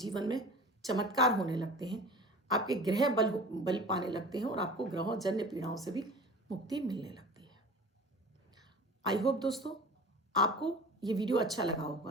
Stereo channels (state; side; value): normal; both; correlation 0.40